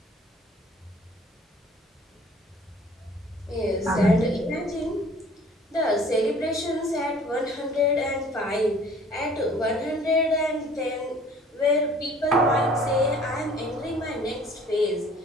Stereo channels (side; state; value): both; normal; correlation 0.52